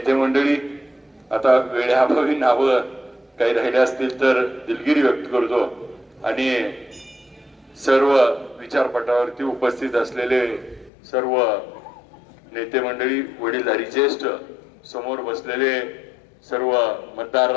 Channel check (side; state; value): right; drops out; at 10.9 s